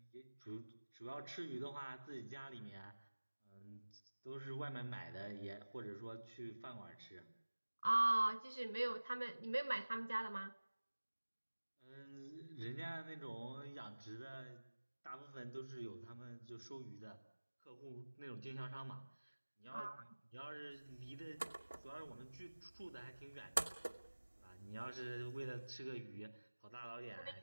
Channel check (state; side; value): inverted; both; correlation -1.00